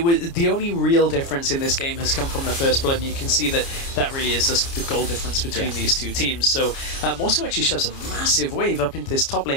the only real difference in this game has come from the first blood, and you can see that that really is just the goal difference between these two teams. So Morsu actually shoves a massive wave up into this top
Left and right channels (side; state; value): right; late; 29 ms